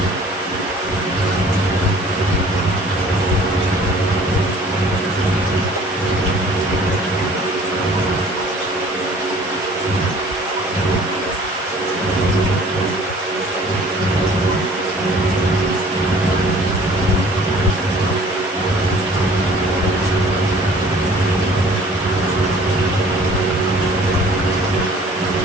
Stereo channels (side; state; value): both; normal; correlation 0.51